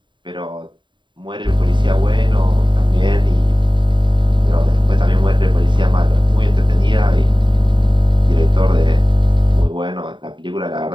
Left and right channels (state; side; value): late; left; 0.23 ms